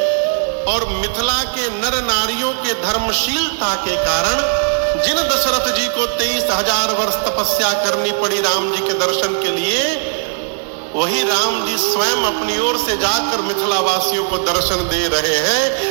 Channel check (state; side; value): silent; left; digital silence